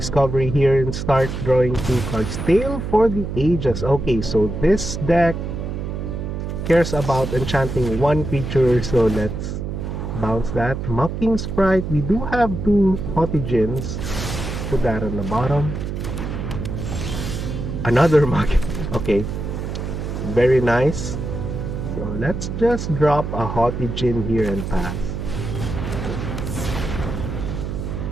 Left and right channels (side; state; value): right; noise; hum, 5 dB below the sound